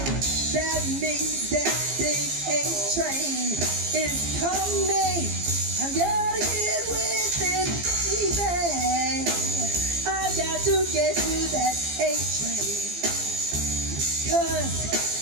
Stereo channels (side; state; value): left; late; 15 ms